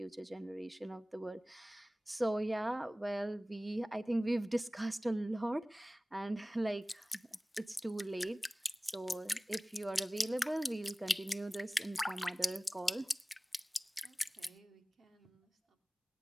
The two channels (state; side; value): normal; both; correlation 0.98